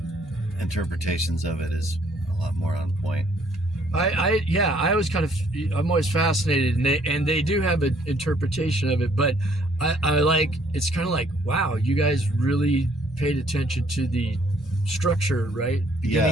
interpretations of it is a lot more on point. I'm always fascinated, and they do have an interpretation of it, but I like, it's kind of like, wow, you guys really paid attention to the structure, right?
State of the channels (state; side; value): normal; both; correlation 0.64